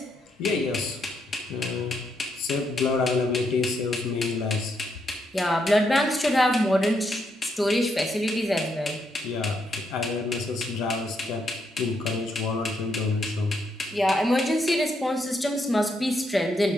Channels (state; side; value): normal; both; correlation 0.78